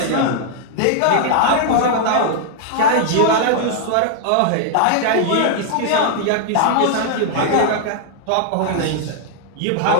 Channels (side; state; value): both; different; correlation -0.01